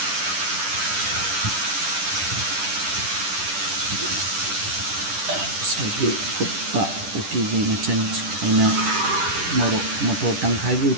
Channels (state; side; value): late; left; 10 ms